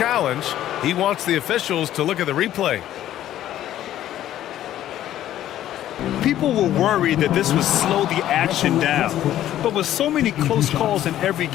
He wants the officials to look at the replay. People were worried that this would slow the action down. But with so many close calls in every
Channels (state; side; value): quieter; right; 12.5 dB